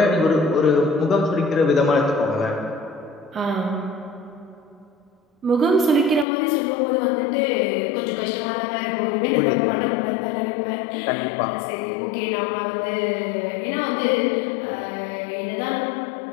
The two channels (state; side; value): drops out; right; at 6.2 s